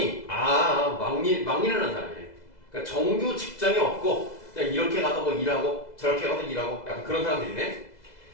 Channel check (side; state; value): right; late; 2.0 ms